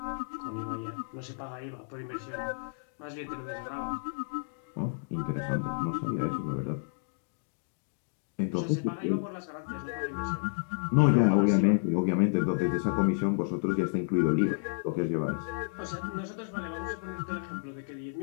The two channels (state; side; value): silent; right; digital silence